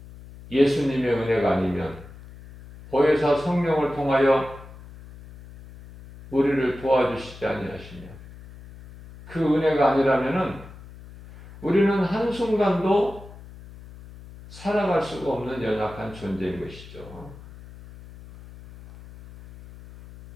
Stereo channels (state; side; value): noise; left; hum, 18 dB below the sound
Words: 예수님의 은혜가 아니면, 보혜사 성령을 통하여 우리를 도와주시지 아니하시면, 그 은혜가 아니라면은 우리는 한순간도 살아갈 수가 없는 연약한 존재인 것이죠.